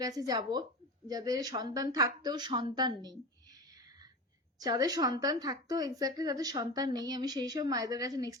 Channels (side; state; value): both; normal; correlation 0.27